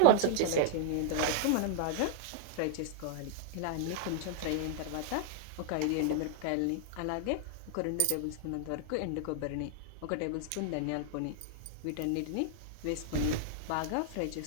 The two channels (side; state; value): both; different; correlation 0.00